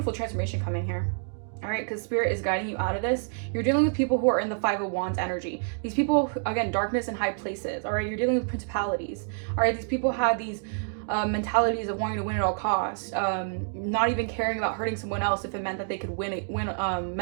transformation coming here. All right, because Spirit is guiding you out of this. You're dealing with people who are in the Five of Wands energy. These people, again, darkness in high places. All right, you're dealing with principalities. All right, these people had these mentalities of wanting to win at all costs, not even caring about hurting someone else if it meant that they could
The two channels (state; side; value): silent; left; digital silence